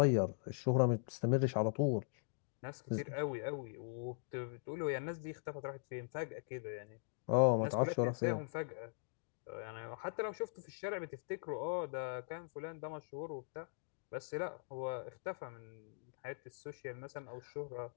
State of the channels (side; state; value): right; silent; digital silence